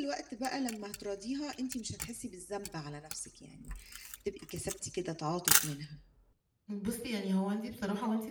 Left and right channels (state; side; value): identical; both; correlation 1.00